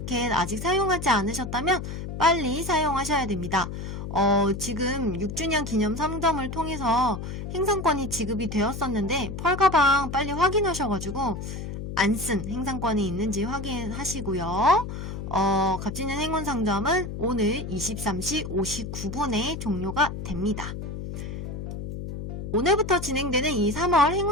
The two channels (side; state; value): left; noise; hum, 7 dB below the sound